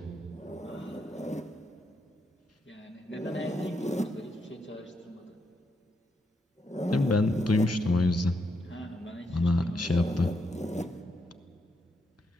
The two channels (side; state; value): both; normal; correlation 0.79